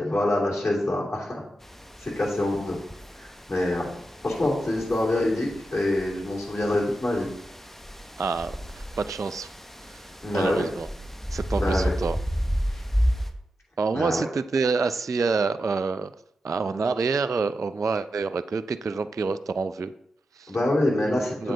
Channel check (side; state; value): both; normal; correlation 0.89